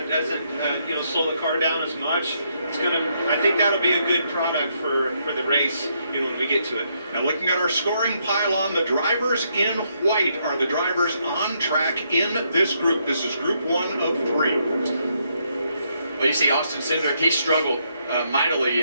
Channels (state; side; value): inverted; both; correlation -0.75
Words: doesn't slow the car down as much. I think that'll be a good product for the race, when we get to it. Now looking at our scoring pylon, the drivers in white are the drivers on track in this group. This is group 1 of 3. Well, you see Austin Cindric, he struggled mightily